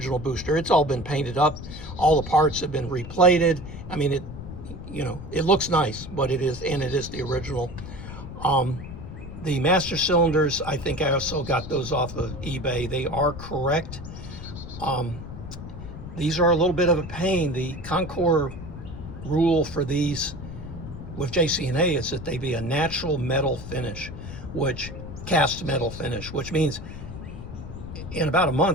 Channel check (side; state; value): left; noise; rumble, 11 dB below the sound